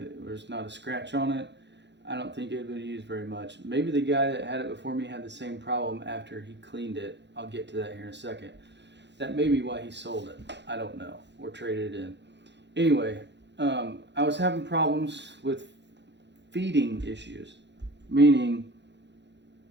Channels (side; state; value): left; late; 0.51 ms